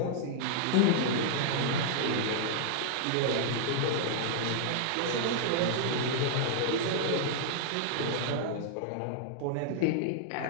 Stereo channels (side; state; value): both; different; correlation -0.01